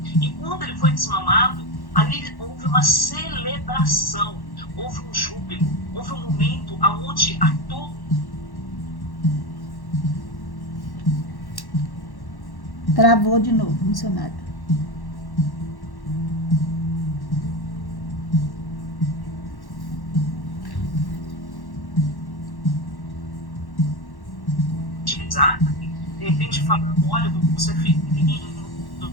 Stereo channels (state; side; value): late; right; 1.1 ms